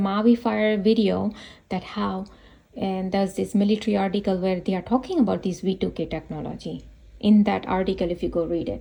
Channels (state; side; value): identical; both; correlation 1.00